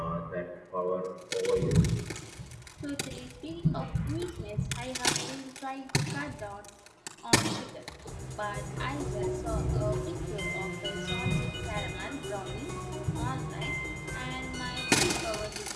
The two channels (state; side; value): identical; both; correlation 1.00